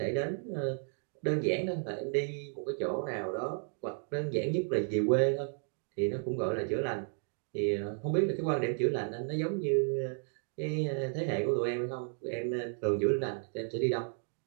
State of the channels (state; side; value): silent; left; 56 dB below the other